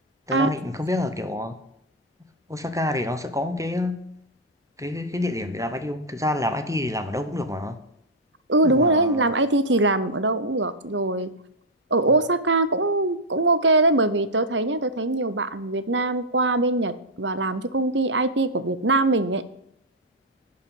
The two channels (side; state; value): both; normal; correlation -0.05